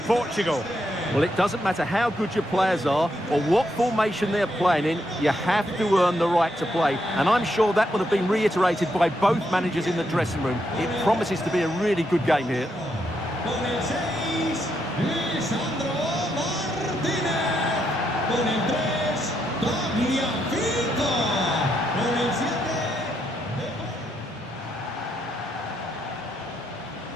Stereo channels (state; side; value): normal; both; correlation 0.79